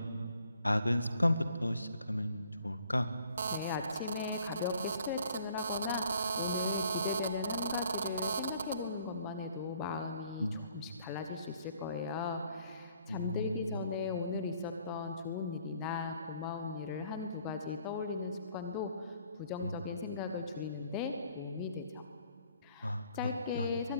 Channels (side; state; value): both; inverted; correlation -0.61